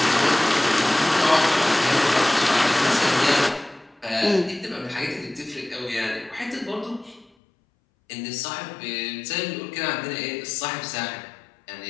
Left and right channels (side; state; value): right; drops out; at 7.3 s